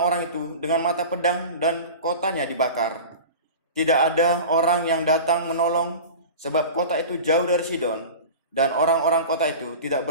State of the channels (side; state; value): both; inverted; correlation -0.34